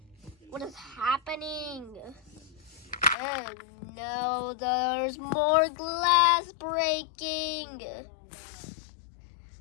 What is happening? Oh no, there's more glass breaking.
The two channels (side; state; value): right; drops out; at 3.2 s